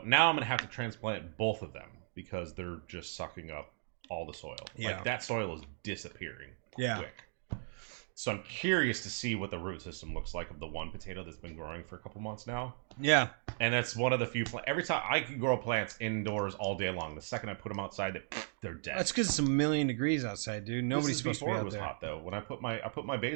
now I'm gonna have to transplant both of them because they're just sucking up all the soil. Yeah. Like that soil is disappearing Yeah. quick. So I'm curious to see what the root system looks like of the one potato that's been growing for a couple months now. Yeah. And that's one of the few every time I can grow plants indoors all day long. The second I put them outside, they're dead. That's because it's 1,000,000 degrees outside, dude. This Nobody's is supposed to be before it out was there. hot though. When I put my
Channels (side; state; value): left; silent; digital silence